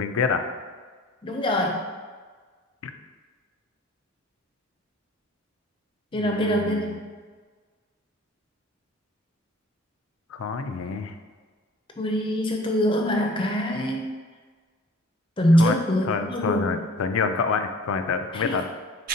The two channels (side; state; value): both; normal; correlation 0.50